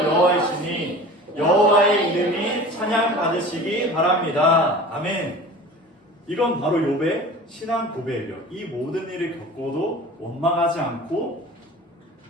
여호와이시니 여호와의 이름이 찬양받을 받으시기 바랍니다. 아멘. 이건 바로 욥의 신앙 고백이요. 이 모든 일을 겪어도 원망하지 않고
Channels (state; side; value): normal; both; correlation 0.39